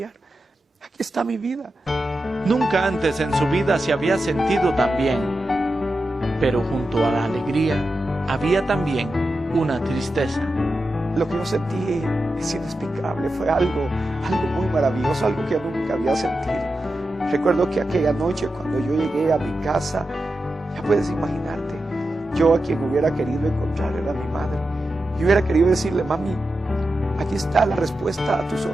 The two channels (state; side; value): normal; both; correlation 0.90